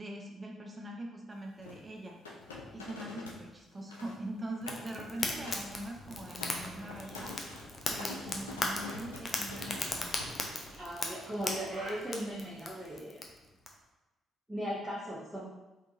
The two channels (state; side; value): normal; both; correlation 0.78